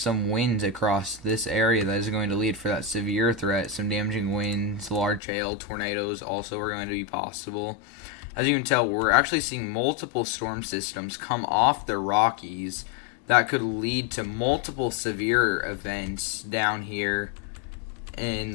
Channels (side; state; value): right; drops out; at 5.2 s